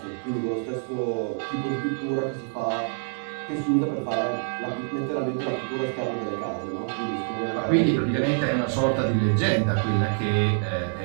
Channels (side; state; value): left; silent; 61 dB below the other